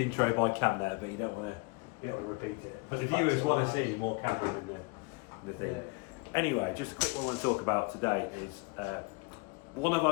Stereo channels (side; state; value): right; quieter; 27.8 dB